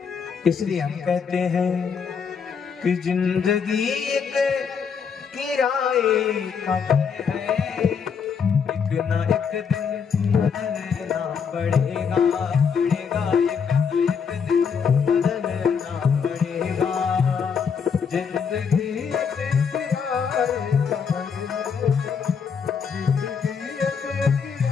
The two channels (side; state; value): right; quieter; 6.4 dB